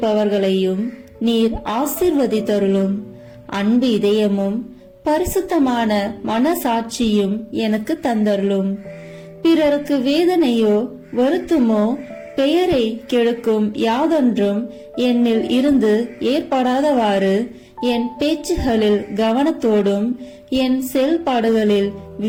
நீர் ஆசீர்வதித்தருளும். அன்பு இதயமும் பரிசுத்தமான மனசாட்சியும் எனக்கு தந்தருளும். பிறருக்கு வேதனையோ வருத்தமோ பெயரை கெடுக்கும் யாதொன்றும் என்னில் இருந்து ஏற்படாதவாறு என் பேச்சுகளில் கவனத்தோடும் என் செயல்பாடுகளில்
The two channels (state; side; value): identical; both; correlation 1.00